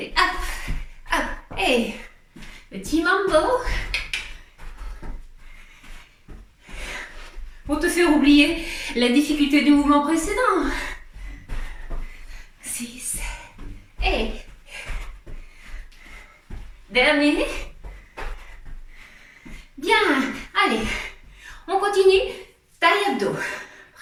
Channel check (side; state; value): both; identical; correlation 1.00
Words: hop, hop. Et petit mambo. Pour te faire oublier la difficulté du mouvement précédent. 6 et dernier. Bien. Allez, on continue. Taille abdos.